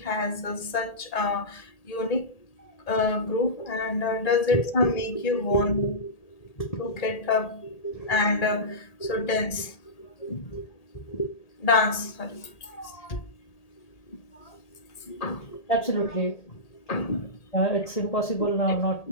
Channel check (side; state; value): right; late; 1.8 ms